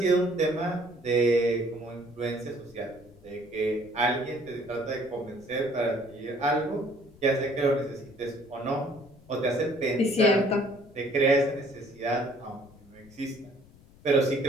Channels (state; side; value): noise; left; rumble, 24 dB below the sound